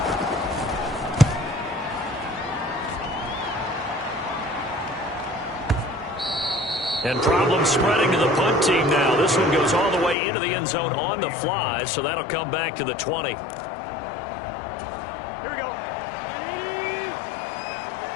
And problems spreading to the punt team now. This one goes all the way into the end zone on the fly, so that'll come back to the 20. Here we go.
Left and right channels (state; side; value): drops out; right; at 10.2 s